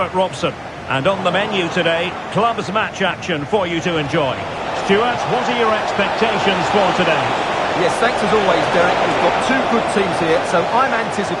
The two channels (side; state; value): both; identical; correlation 1.00